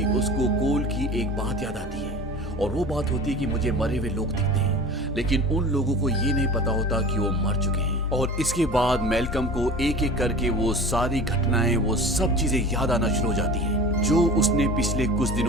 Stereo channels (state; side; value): normal; both; correlation 0.38